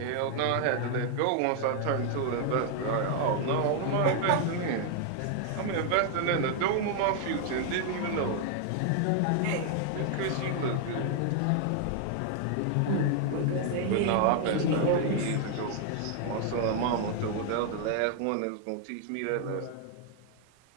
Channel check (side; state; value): both; different; correlation 0.00